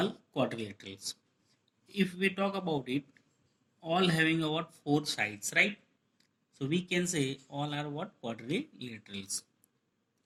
quadrilaterals. If we talk about it, all having about four sides, right? So we can say all are what quadrilaterals,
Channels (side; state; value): both; identical; correlation 1.00